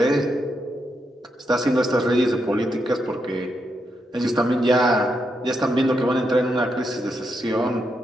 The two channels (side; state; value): both; normal; correlation 0.82